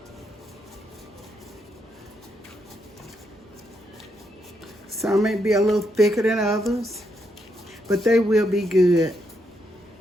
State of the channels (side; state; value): both; normal; correlation 0.79